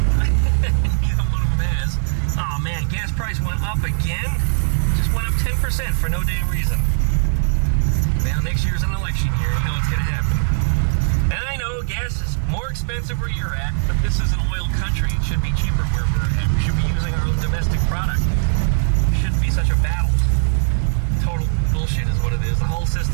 Neither one of them has. Oh man, gas price went up again. Just went up 10% for no damn reason. Well, next year's an election year. You know what's gonna happen. And I know gas is more expensive where you're at, but this is an oil country. It should be cheaper where we're at. We should be using our own domestic product. It shouldn't be such a battle. Total bullshit is what it is. The whole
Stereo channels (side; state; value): left; silent; digital silence